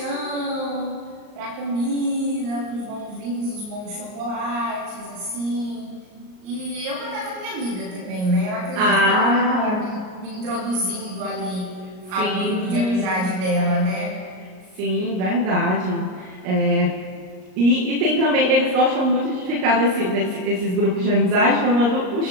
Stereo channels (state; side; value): late; left; 38 ms